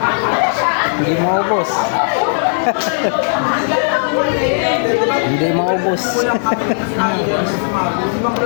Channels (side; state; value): right; silent; digital silence